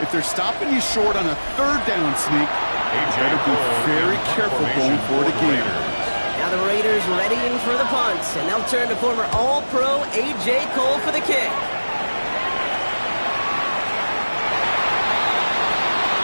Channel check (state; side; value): inverted; both; correlation -1.00